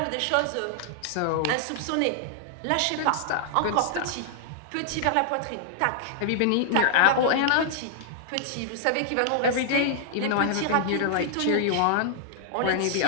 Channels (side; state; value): both; different; correlation -0.01